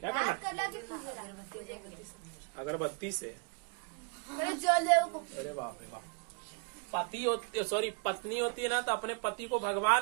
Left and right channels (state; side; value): quieter; left; 36.5 dB